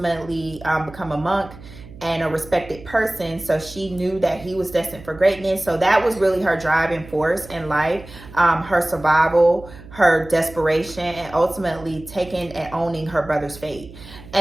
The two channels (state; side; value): noise; right; hum, 18 dB below the sound